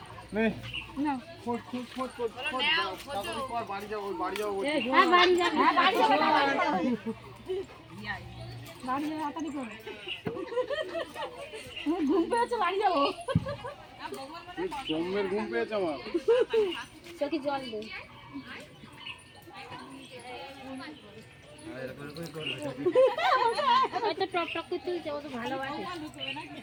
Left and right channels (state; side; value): identical; both; correlation 1.00